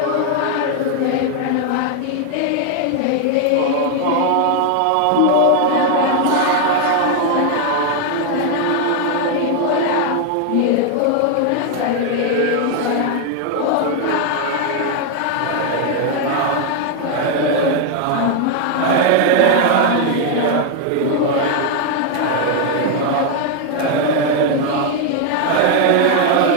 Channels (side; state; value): both; different; correlation 0.00